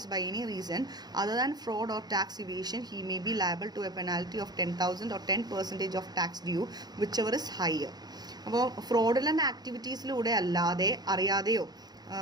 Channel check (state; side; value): late; left; 0.19 ms